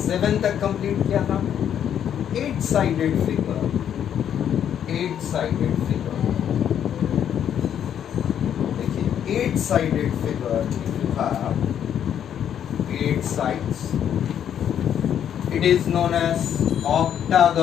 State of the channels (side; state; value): right; quieter; 9.4 dB